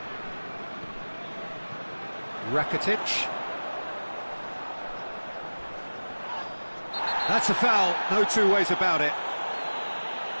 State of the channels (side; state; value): both; inverted; correlation -1.00